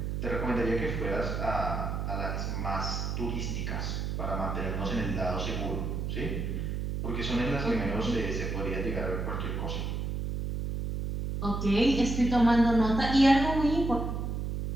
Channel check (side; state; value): right; noise; hum, 2 dB below the sound